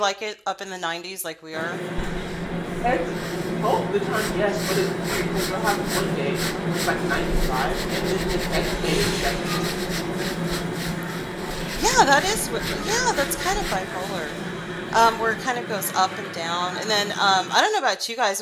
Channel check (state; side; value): identical; both; correlation 1.00